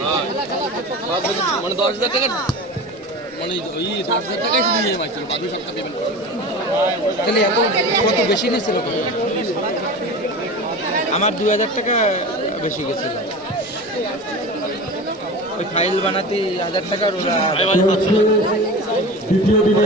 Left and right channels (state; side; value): normal; both; correlation 0.32